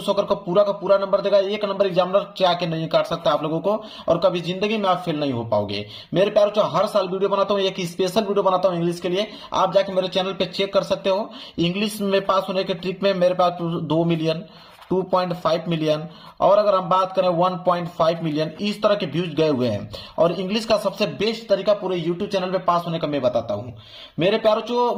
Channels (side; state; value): both; identical; correlation 1.00